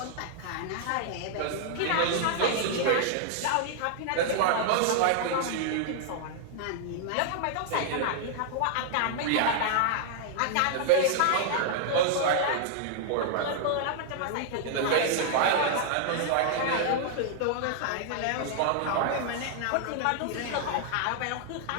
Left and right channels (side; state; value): both; different; correlation -0.01